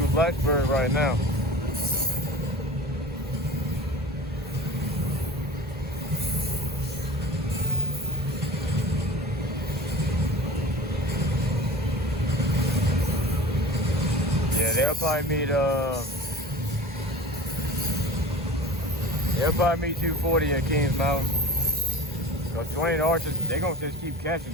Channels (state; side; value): normal; both; correlation 0.36